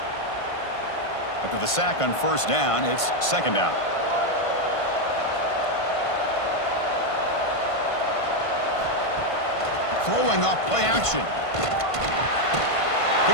After the sack on first down, it's second down. Throwing off play action.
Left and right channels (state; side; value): late; right; 1.5 ms